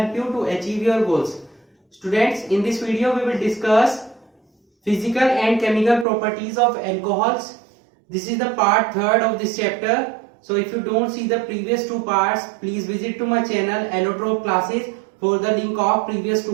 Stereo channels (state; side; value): drops out; left; at 6.1 s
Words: you to achieve your goals. Students, in this video we will discuss physical and chemical properties of alcohols. This is the part 3rd of this chapter. So if you don't see the previous two parts, please visit to my channel Allotrop classes for the link of previous